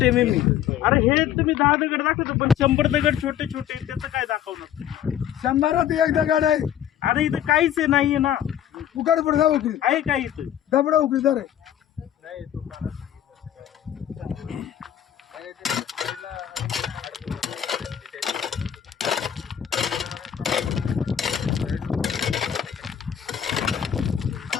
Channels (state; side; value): quieter; right; 10.2 dB